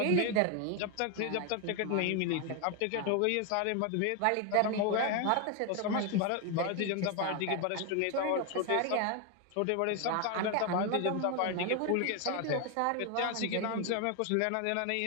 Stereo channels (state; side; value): different; both; correlation 0.01